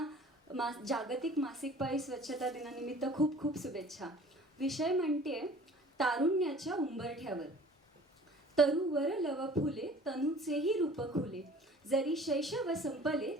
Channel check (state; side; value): normal; both; correlation 0.48